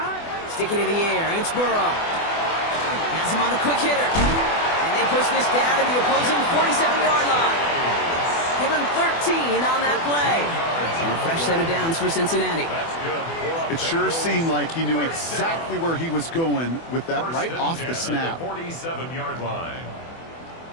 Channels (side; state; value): right; late; 24 ms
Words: Sticking in the air, it's Burrow. Has him on the quick hitter. And they push this down to the opposing 47-yard line. Give him 13 on that play. And a fresh set of downs for Cincinnati. It sure seemed like he knew exactly where he was going with that right off the snap. 47-yard line.